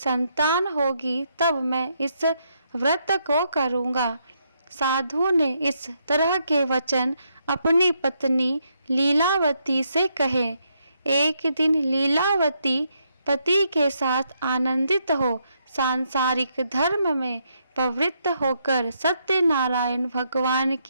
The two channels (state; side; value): inverted; both; correlation -0.77